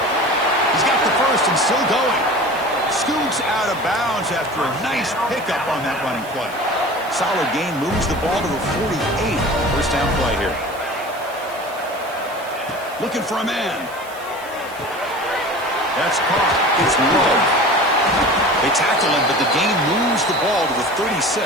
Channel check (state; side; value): noise; right; hiss, 20 dB below the sound